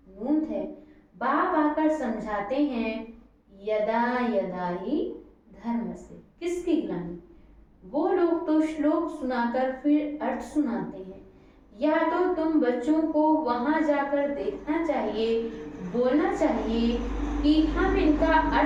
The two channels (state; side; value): identical; both; correlation 1.00